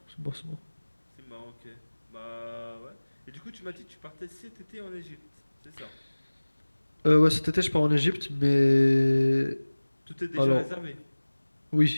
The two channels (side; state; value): both; inverted; correlation -1.00